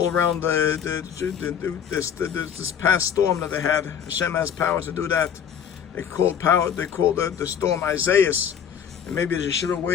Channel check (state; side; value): quieter; right; 8.3 dB